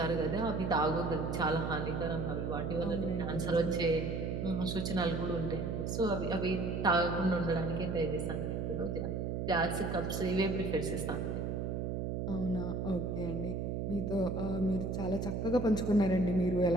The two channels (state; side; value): noise; right; hum, 1 dB below the sound